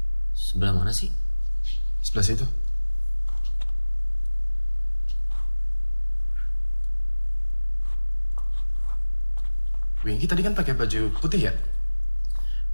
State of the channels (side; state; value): both; inverted; correlation -1.00